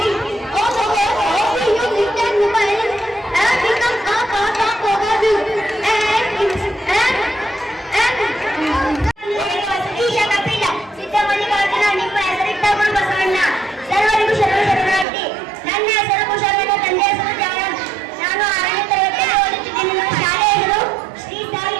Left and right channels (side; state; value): left; drops out; at 15.1 s